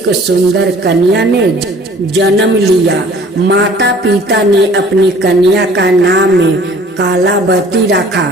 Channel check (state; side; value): normal; both; correlation 0.52